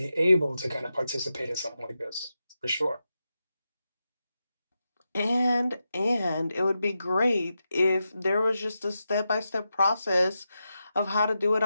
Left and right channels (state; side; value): inverted; both; correlation -0.89